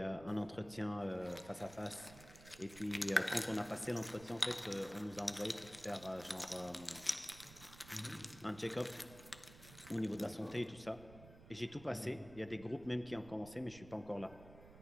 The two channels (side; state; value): right; noise; rumble, 18 dB below the sound